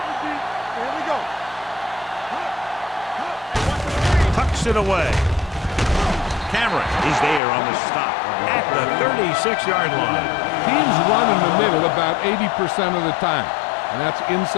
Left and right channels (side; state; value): right; drops out; at 7.4 s